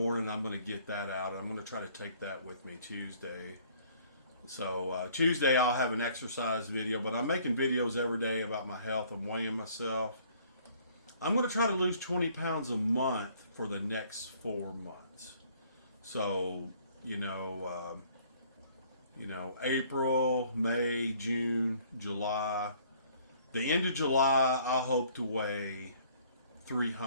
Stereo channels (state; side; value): inverted; both; correlation -0.59